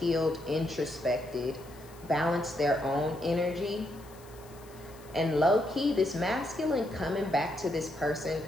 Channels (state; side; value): noise; left; hiss, 24 dB below the sound